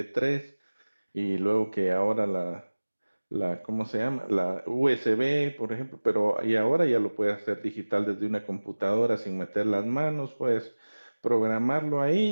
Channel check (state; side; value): inverted; both; correlation -1.00